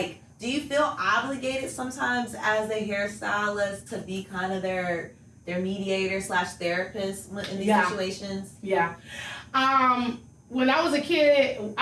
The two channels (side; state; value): both; identical; correlation 1.00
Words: do you feel obligated sometimes as a hairstylist to be kind of their mediator / therapist in these situations? Yeah. When I was a kid,